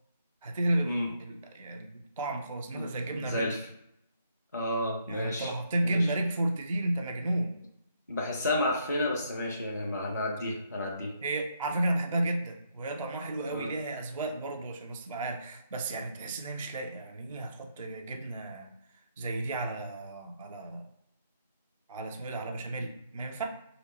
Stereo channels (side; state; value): both; inverted; correlation -0.75